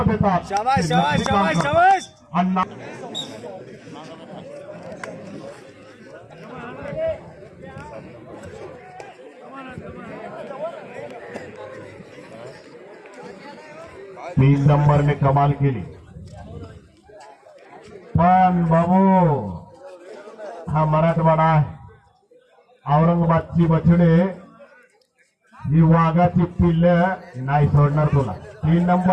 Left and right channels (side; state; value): both; identical; correlation 1.00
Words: देतात. शाबाश शाबाश शाबाश शाबाश. अण्णा तीन नंबरने कमाल केली. पण बाबू हा मराठवाडा आहे. औरंगाबादची बछडे ही वाघाची पिल्ल नाही सोडणार तुला. 3